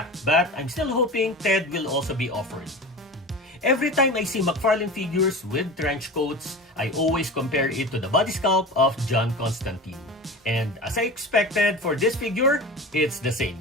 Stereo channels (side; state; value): both; normal; correlation 0.32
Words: but I'm still hoping Ted will also be offered. Every time I see McFarlane figures with trench coats, I always compare it to the body sculpt of John Constantine. And as I expected for this figure, it's the